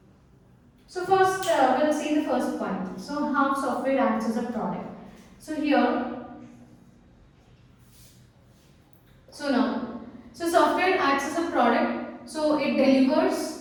So first we'll see the first point. So how software acts as a product. So here, so software acts as a product. So it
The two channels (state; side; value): identical; both; correlation 1.00